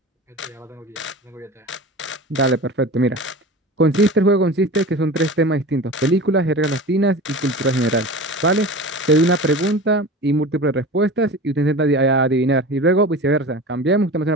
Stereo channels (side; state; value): both; normal; correlation 0.33